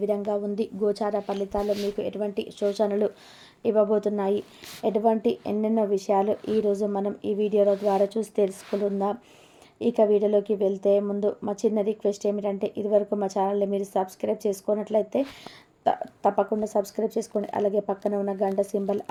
విధంగా ఉంది, గోచార ఫలితాల్లో మీకు ఎటువంటి సూచనలు ఇవ్వబోతున్నాయి, ఎటువంటి ఎన్నెన్నో విషయాలు ఈరోజు మనం ఈ వీడియోల ద్వారా చూసి తెలుసుకుందాం. ఇక వీడియోలోకి వెళ్తే ముందు మా చిన్న రిక్వెస్ట్ ఏమిటంటే, ఇదివరకు మా ఛానల్ని మీరు సబ్స్క్రైబ్ చేసుకున్నట్లయితే తప్పకుండా సబ్స్క్రైబ్ చేసుకోండి. అలాగే పక్కన ఉన్న గంట సింబల్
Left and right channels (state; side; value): identical; both; correlation 1.00